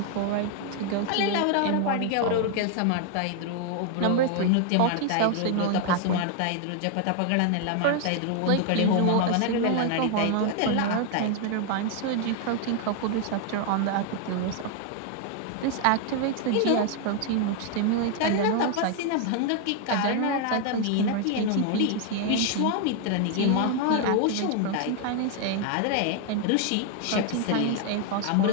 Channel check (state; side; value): different; both; correlation 0.00